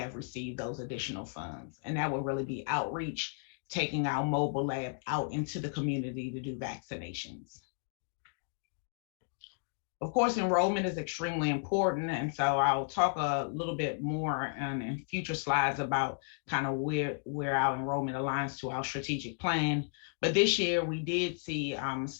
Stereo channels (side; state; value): right; silent; digital silence